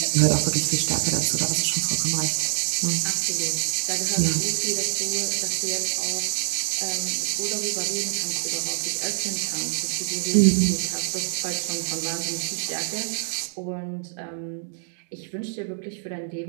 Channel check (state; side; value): silent; left; digital silence